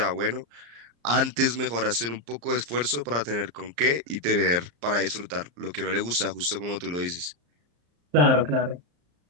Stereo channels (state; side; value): late; left; 34 ms